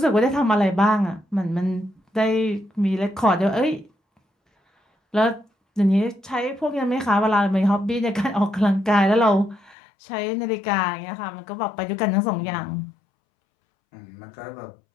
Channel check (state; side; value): drops out; right; at 9.8 s